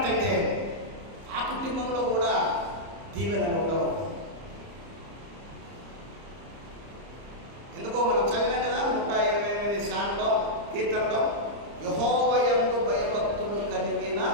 ఆ కుటుంబంలో కూడా దీవెనలు ఉండవు. ఎందుకో మనం చదివాం కదా 128 సాంగ్లో, కీర్తనలో, యెహోవా యందు భయభక్తులు కలిగిన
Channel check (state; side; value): late; left; 30 ms